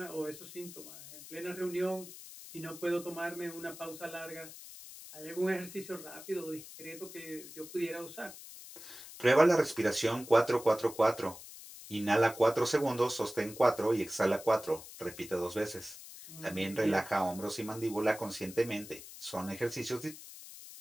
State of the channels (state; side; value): noise; left; hiss, 15 dB below the sound